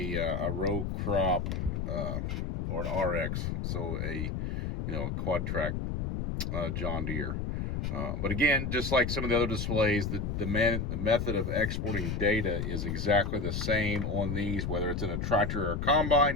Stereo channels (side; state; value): left; noise; rumble, 2 dB below the sound